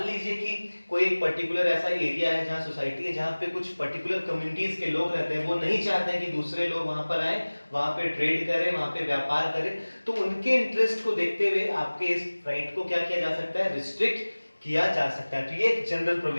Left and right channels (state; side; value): inverted; both; correlation -1.00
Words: लीजिए कि कोई एक पर्टिकुलर ऐसा एरिया है जहां सोसाइटी है, जहां पे कुछ पर्टिकुलर कम्युनिटीज के लोग रहते हैं, वो नहीं चाहते हैं कि दूसरे लोग वहां पर आए, वहां पे ट्रेड करें, वहां पे व्यापार करें। तो उनके इंटरेस्ट को देखते हुए आपके इस राइट को क्या किया जा सकता है? रिस्ट्रिक्ट किया जा सकता है। तो ये एक जनरल